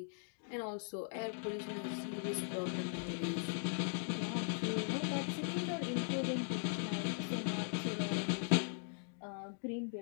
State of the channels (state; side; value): silent; right; digital silence